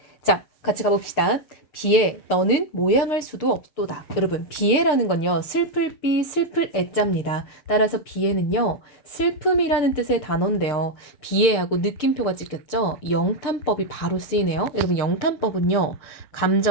자, 같이 가봅시다. 비에 너는 모양할 수도 없도다. 여러분, 비에라는 건요, 슬플 비, 슬플 애자입니다. 따라서 비에는요, 슬픔이라는 뜻의 단어인데요. 비에하고 느낌표가 찍혔죠? 영탄법이 바로 쓰이네요. 여러분, 영탄법은요,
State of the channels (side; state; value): right; late; 6.7 ms